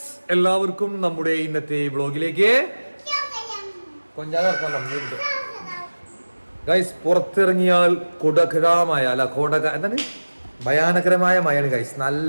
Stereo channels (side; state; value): both; inverted; correlation -1.00